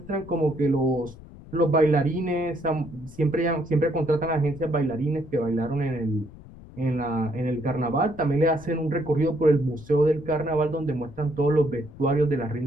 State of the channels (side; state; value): left; noise; rumble, 18 dB below the sound